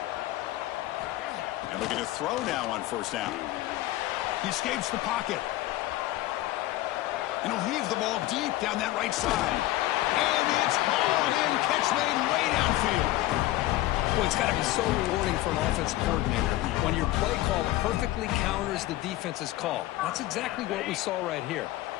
And looking to throw now on first down. He escapes the pocket. And he'll heave the ball deep down that right side. And it's hauled in. Catch made way downfield. Well, it's got to be so rewarding for an offensive coordinator when your play call perfectly counters the defense's call. That's exactly what we saw right here.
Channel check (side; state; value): right; quieter; 16.4 dB